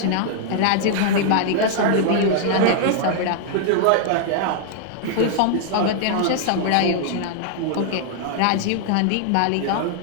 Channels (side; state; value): both; different; correlation -0.01